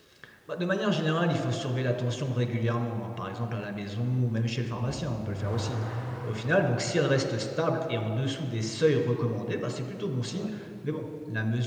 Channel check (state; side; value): identical; both; correlation 1.00